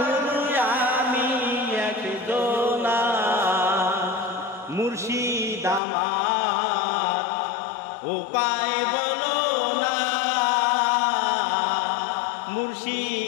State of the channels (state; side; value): drops out; right; at 5.8 s